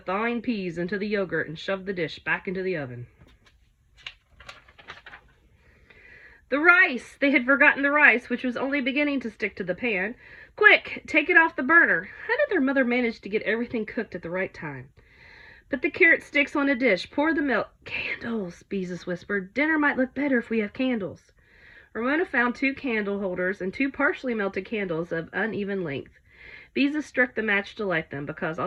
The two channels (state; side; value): identical; both; correlation 1.00